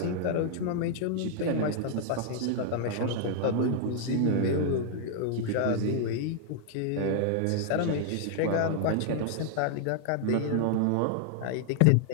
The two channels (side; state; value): both; different; correlation 0.00